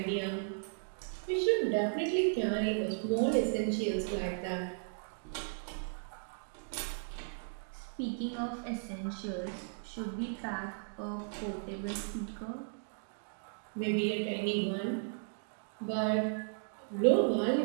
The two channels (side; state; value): left; silent; digital silence